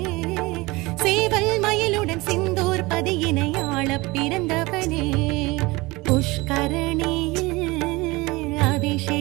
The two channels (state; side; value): quieter; left; 22.6 dB